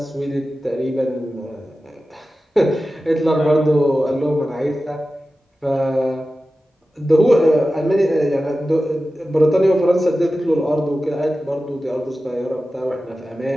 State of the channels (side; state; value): both; normal; correlation 0.94